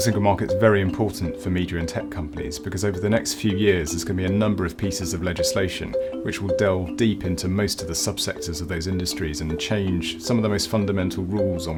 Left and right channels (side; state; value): both; identical; correlation 1.00